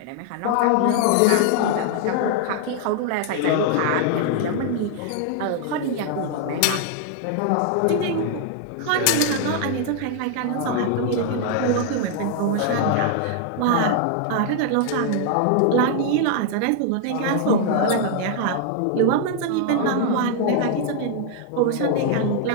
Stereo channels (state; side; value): different; both; correlation 0.00